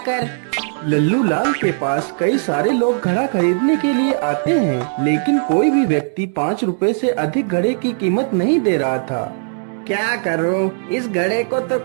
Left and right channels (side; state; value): left; silent; digital silence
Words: लल्लू लाल के पास कई सारे लोग घड़ा खरीदने के लिए आते हैं, लेकिन कोई भी व्यक्ति 5 रुपए से अधिक घड़े की कीमत नहीं दे रहा था। क्या करूं, इस घड़े को तो